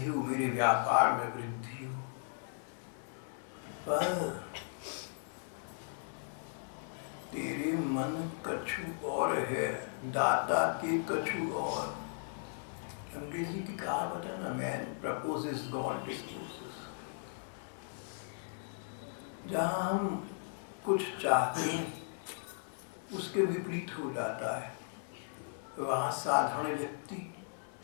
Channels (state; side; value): silent; right; 53 dB below the other